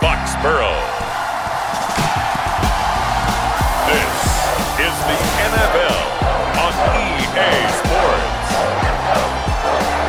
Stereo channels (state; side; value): identical; both; correlation 1.00